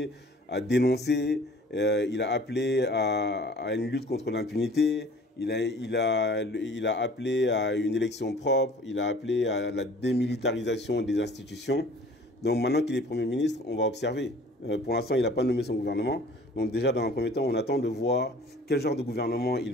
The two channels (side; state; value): both; normal; correlation 0.49